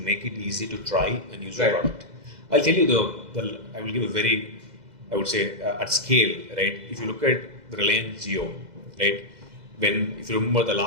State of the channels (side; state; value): left; late; 2.0 ms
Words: it easy to try and use the product. I'll tell you I will give a very, I would say, at scale, right? If you look at the Reliance Jio, right? If you remember the